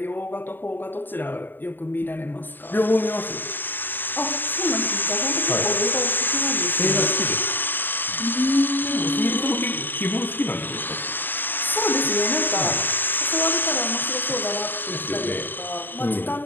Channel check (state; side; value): late; right; 0.094 ms